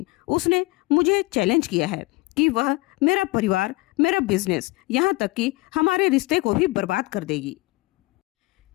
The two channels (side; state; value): right; quieter; 22.8 dB